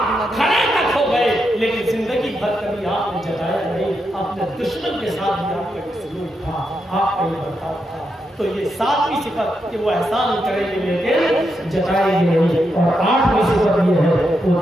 کھڑے تک ہو گئے لیکن زندگی بھر کبھی آپ نے جتایا نہیں، اپنے دشمن کے ساتھ بھی آپ کا یہ سلوک تھا، آپ کا یہ برتاؤ تھا۔ تو یہ 7ویں صفت کہ وہ احسان کریں گے لیکن جتائیں گے نہیں، اور 8ویں صفت یہ ہے وہ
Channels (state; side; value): normal; both; correlation 0.84